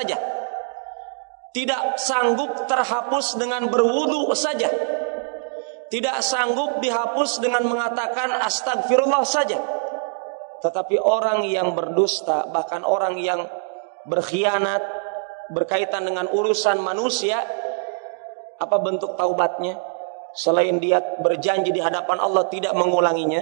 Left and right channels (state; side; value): silent; left; digital silence